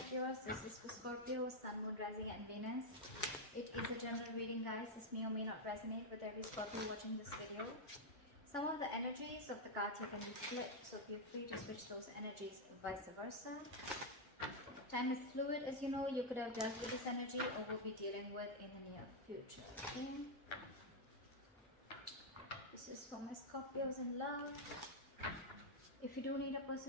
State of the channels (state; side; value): normal; both; correlation 0.00